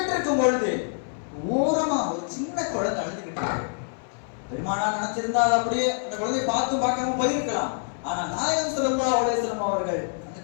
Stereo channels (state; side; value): silent; right; 61 dB below the other